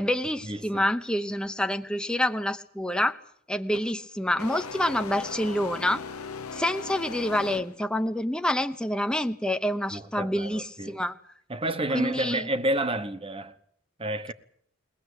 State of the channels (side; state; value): both; normal; correlation 0.75